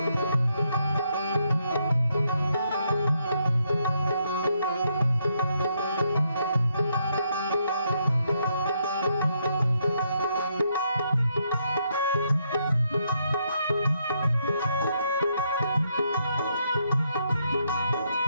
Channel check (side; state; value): both; inverted; correlation -0.76